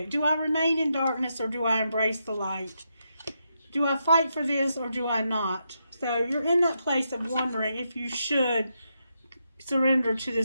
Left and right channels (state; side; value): inverted; both; correlation -0.83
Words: Do I remain in darkness or do I embrace the light? Do I fight for this or do I not? So you're in that place of wondering if you should surrender to